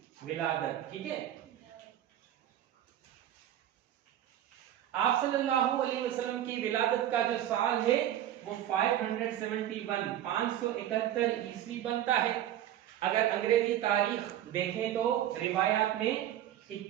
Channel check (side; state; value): left; quieter; 11.8 dB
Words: विलादत। ठीक है, आप सल्लल्लाहु अलैहि वसल्लम की विलादत का जो साल है वो 571 ईस्वी बनता है। अगर अंग्रेजी तारीख देखें तो रिवायात में